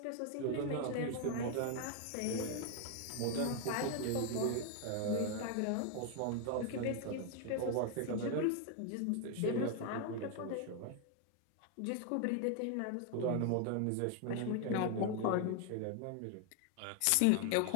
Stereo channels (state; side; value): different; both; correlation 0.00